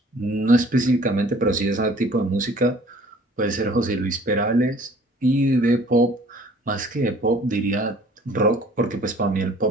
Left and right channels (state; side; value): normal; both; correlation 0.53